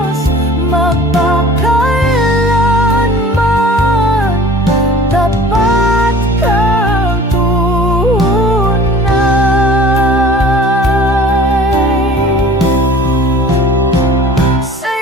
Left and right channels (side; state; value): both; normal; correlation 0.46